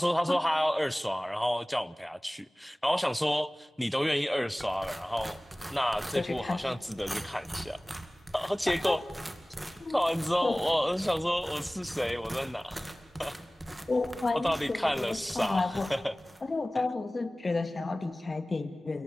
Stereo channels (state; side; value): normal; both; correlation 0.98